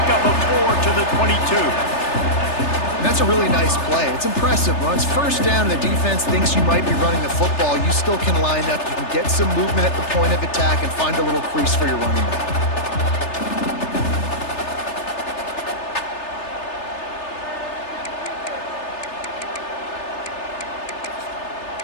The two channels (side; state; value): right; late; 3.3 ms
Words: up a 4 to the 22. That's a really nice play. It's impressive. When it's first down and the defense thinks you might be running the football, you still can line up. You can get some movement at the point of attack and find a little crease for your running back.